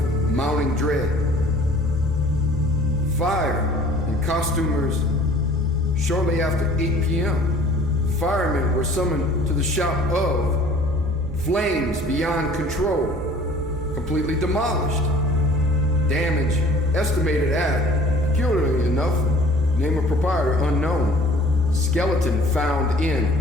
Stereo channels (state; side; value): normal; both; correlation 0.50